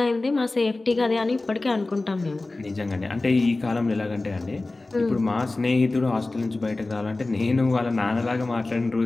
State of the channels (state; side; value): quieter; right; 3.1 dB